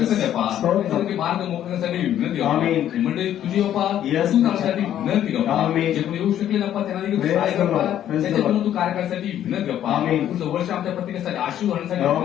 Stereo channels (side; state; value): right; quieter; 11.1 dB